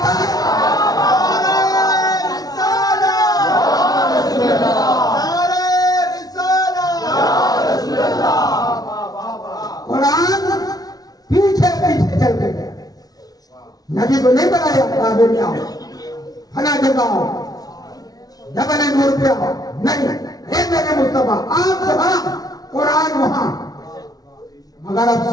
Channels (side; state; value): right; late; 0.18 ms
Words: है। कुरान पीछे पीछे चलते गए। नबी को नहीं बनाया काबे में आओ, फला जगह आओ, जबल नूर पे आओ, नहीं, हे मेरे मुस्तफा आप जहां कुरान वहां। मगर अब